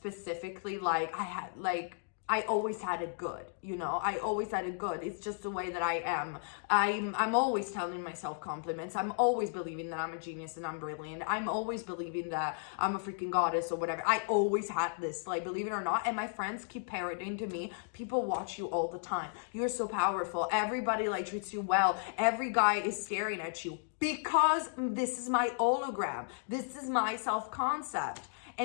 Like I always had it good, you know? I always had it good. It's just the way that I am. I'm always telling myself compliments. I'm always believing that I'm a genius and I'm brilliant. I'm always believing that I'm a freaking goddess or whatever. I always had this, like, believe it or not. And my friends keep parroting to me, people watch you all the time. You're so powerful. Everybody like treats you well. Every guy is staring at you, because this is my hologram. This is my self-concept.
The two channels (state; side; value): silent; right; digital silence